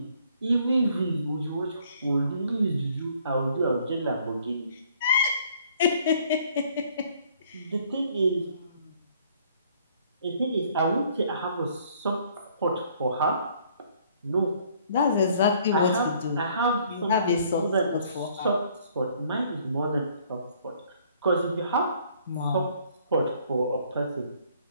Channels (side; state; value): both; inverted; correlation -0.61